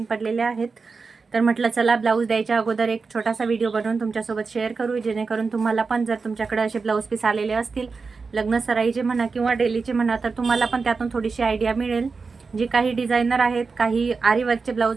पडलेल्या आहेत. तर म्हटलं चला ब्लाऊज द्यायच्या अगोदर एक छोटासा व्हिडिओ बनवून तुमच्यासोबत शेअर करू, जेणेकरून तुम्हाला पण जर तुमच्याकडे असे ब्लाऊज पीस आलेले असतील, लग्न सराईचे म्हणा किंवा डेलीचे म्हणा, तर तुम्हाला पण त्यातून थोडीशी आयडिया मिळेल. जे काही डिझायनर आहेत, काही आरी वर्कचे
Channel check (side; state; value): left; quieter; 4.6 dB